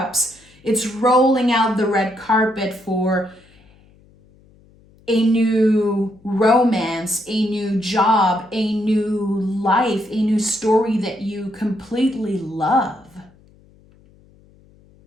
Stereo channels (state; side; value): noise; left; hum, 29 dB below the sound